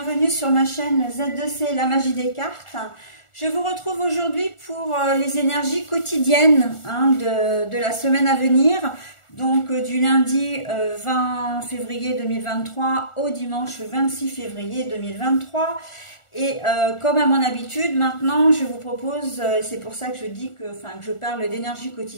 sur ma chaîne Z2C, la magie des cartes. Je vous retrouve aujourd'hui pour les énergies quotidiennes de la semaine à venir. Donc du lundi 20 février 2023 au dimanche 26 février 2023. Et comme à mon habitude, maintenant je vous propose, c'est pour ça que je dis que je parle d'énergie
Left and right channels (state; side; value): late; right; 1.4 ms